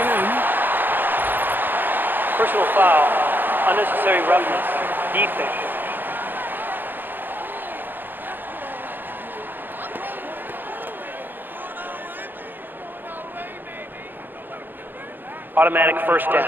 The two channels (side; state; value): left; late; 0.093 ms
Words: in. Personal foul, unnecessary roughness, defense. Automatic first